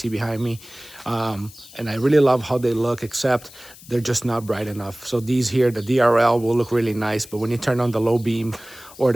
behind me. And I really love how they look, except they're just not bright enough. So these here, the DRL will look really nice, but when you turn on the low beam or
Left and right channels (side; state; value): left; noise; hiss, 20 dB below the sound